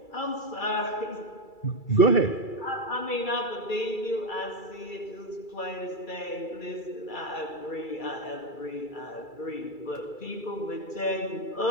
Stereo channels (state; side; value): late; right; 2.3 ms